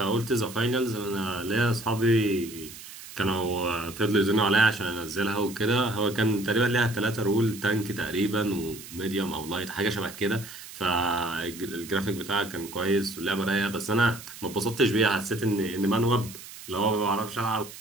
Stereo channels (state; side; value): noise; right; hiss, 15 dB below the sound